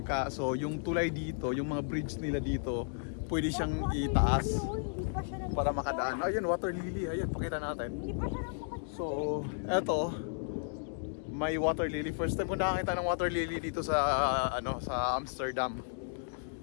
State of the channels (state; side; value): silent; right; digital silence